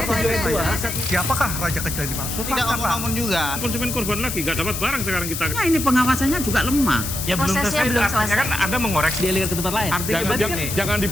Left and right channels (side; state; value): left; noise; hiss, 5 dB below the sound